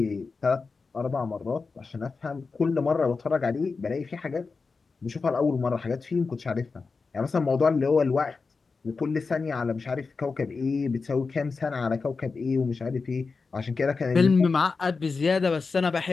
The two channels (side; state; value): right; quieter; 4.5 dB